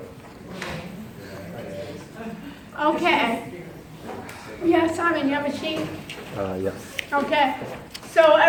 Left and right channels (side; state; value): both; identical; correlation 1.00